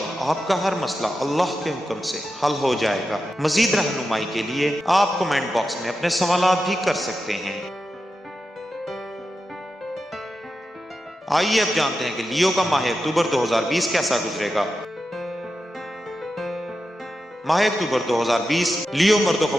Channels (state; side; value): normal; both; correlation 0.90